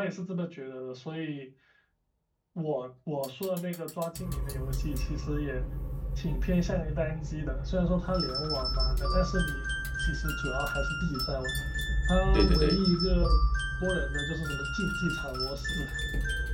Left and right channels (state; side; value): identical; both; correlation 1.00